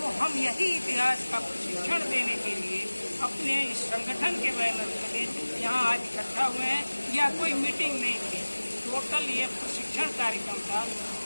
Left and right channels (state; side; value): inverted; both; correlation -1.00